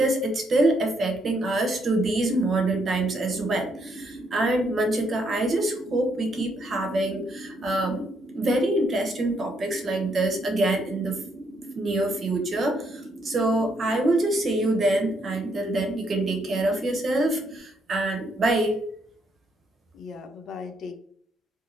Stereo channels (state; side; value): normal; both; correlation 0.74